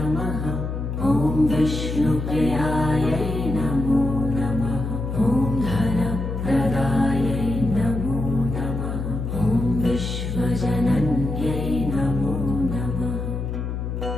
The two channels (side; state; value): left; noise; hum, 4 dB below the sound